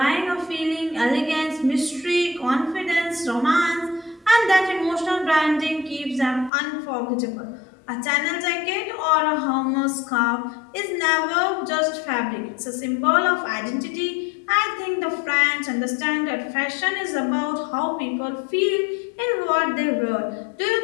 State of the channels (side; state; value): right; drops out; at 6.5 s